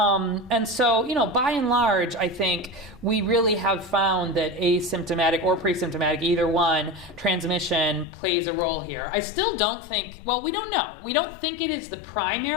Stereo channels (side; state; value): right; drops out; at 8.1 s